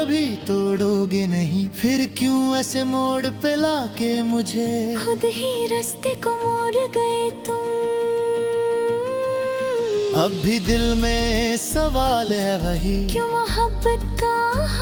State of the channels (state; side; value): identical; both; correlation 1.00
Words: तोड़ोगे नहीं। फिर क्यों ऐसे मोड़ पे लाके मुझे खुद ही रास्ते को मोड़ गए तुम। अब भी दिल में सवाल है वही, क्यों मोहब्बत का